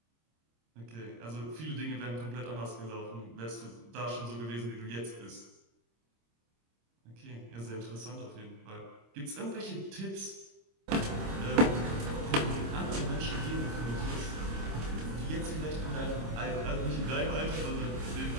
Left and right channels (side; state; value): left; late; 26 ms